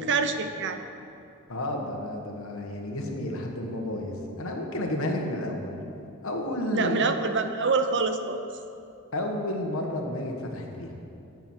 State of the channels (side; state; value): both; normal; correlation 0.06